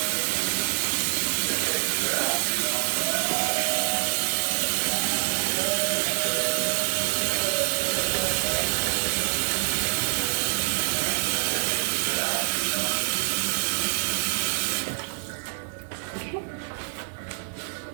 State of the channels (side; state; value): left; silent; 55 dB below the other